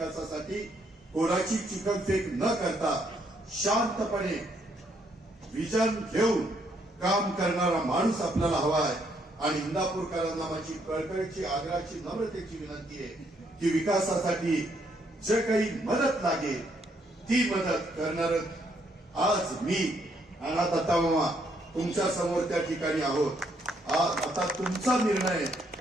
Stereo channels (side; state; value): both; normal; correlation 0.72